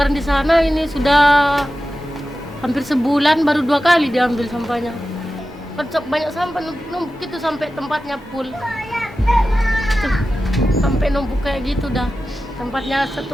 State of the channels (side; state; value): both; normal; correlation 0.94